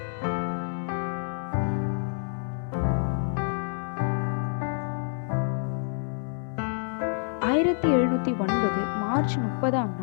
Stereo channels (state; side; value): silent; right; 59 dB below the other